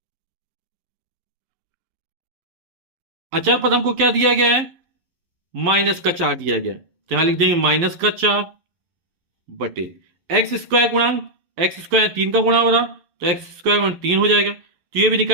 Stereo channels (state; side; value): late; left; 11 ms